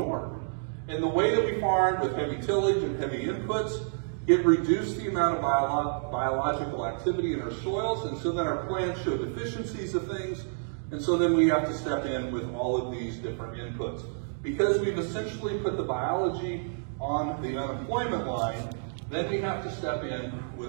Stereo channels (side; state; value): left; silent; digital silence